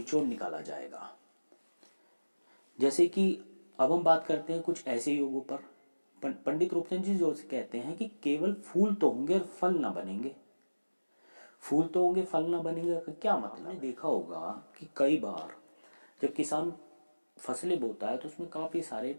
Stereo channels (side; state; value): both; inverted; correlation -1.00